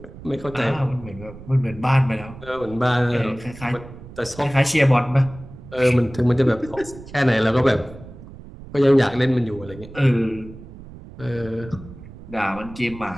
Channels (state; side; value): noise; right; rumble, 16 dB below the sound